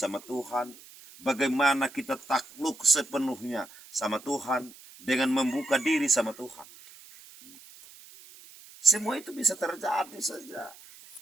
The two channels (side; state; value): right; noise; hiss, 21 dB below the sound